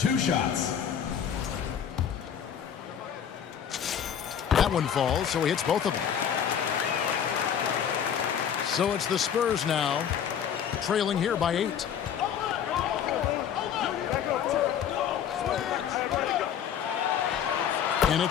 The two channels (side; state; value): right; quieter; 8.6 dB